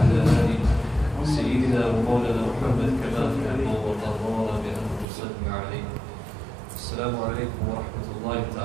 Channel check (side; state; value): left; drops out; at 5.1 s